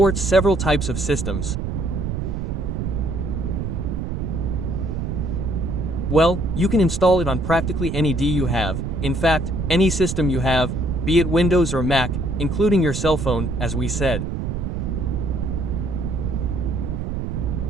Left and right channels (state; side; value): noise; right; rumble, 3 dB below the sound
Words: several types of systems. Well, you can install it on practically any DAW you have, in fact, any system you have, be it Windows or Mac, including your cell phone, as we said.